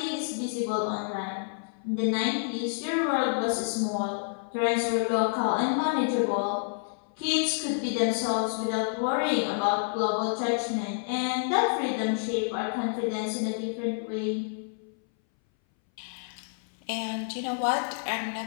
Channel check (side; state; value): right; silent; 59 dB below the other